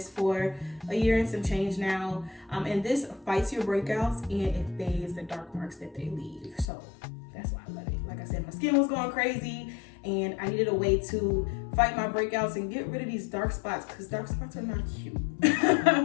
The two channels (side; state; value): right; drops out; at 6.7 s